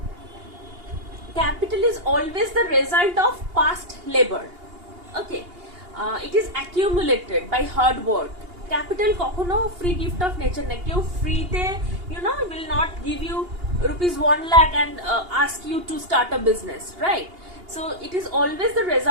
capital is always the result of past labor. Okay, it is accumulated by hard work. Capital কখনো free gift of nature না। কেউ ফ্রিতে will not give you rupees 1 lakh and ask you to start a business, right? So it is always the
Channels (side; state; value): left; late; 2.8 ms